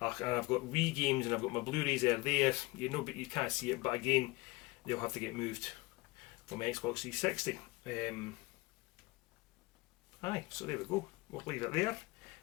got Wii games, and I've got my Blu-rays there. You know, but you can't see it, but again, they'll have to get moved from Xbox 360. Aye, so there we go. We'll leave it there.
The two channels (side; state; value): right; quieter; 22.6 dB